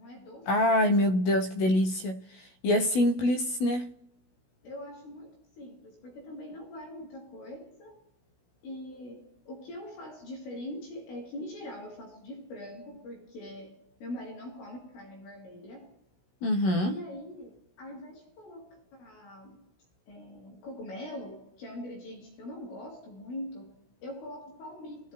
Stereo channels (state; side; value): late; right; 16 ms